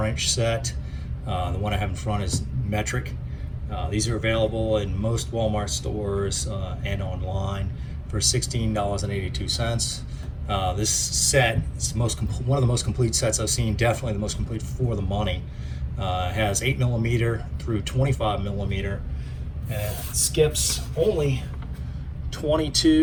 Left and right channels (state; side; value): identical; both; correlation 1.00